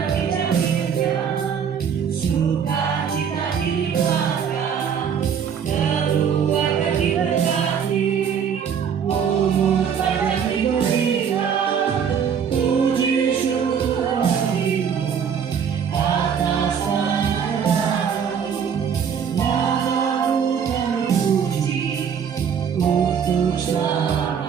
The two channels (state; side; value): quieter; left; 7.5 dB